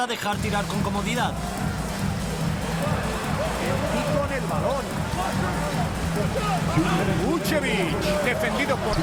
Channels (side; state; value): both; identical; correlation 1.00